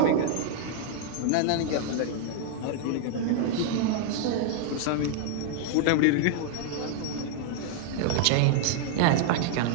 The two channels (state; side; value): different; both; correlation 0.00